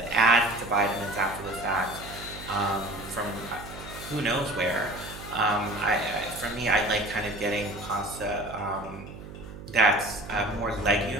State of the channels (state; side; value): noise; right; hum, 13 dB below the sound